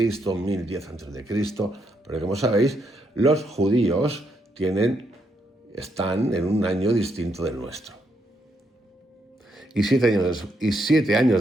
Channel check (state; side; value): normal; both; correlation 0.78